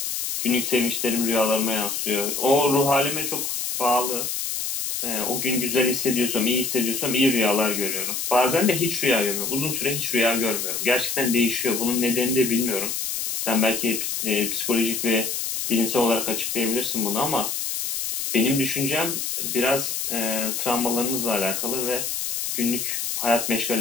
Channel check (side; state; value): left; noise; hiss, 2 dB below the sound